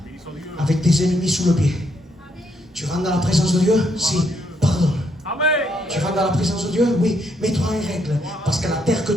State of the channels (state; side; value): normal; both; correlation 0.75